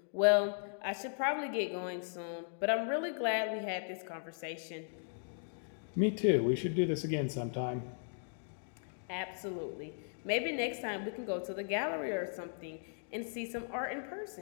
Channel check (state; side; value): silent; right; digital silence